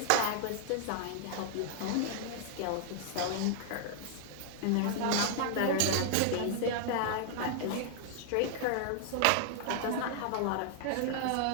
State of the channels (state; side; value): different; both; correlation 0.00